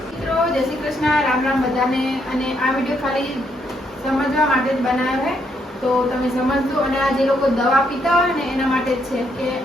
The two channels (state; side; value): normal; both; correlation 0.74